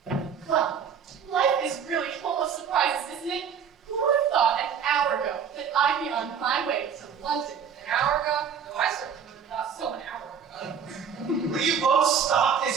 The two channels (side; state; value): left; quieter; 7.3 dB